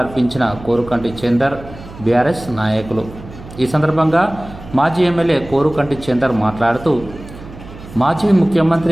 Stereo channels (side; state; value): right; noise; hum, 16 dB below the sound